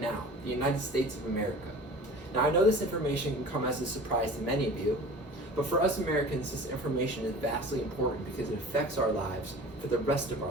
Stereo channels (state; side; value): normal; both; correlation 0.41